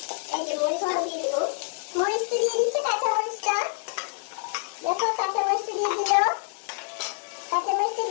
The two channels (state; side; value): silent; right; digital silence